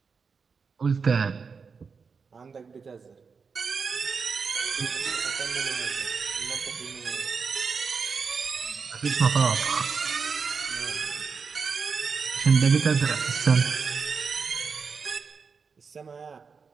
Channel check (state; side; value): quieter; left; 5.3 dB